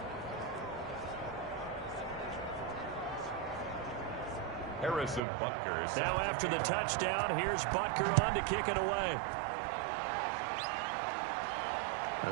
Harrison Butker. Now after the touchdown, here's Butker on to kick it away.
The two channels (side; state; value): left; drops out; at 5.2 s